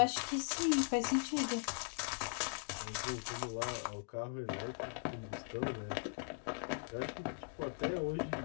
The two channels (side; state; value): right; silent; digital silence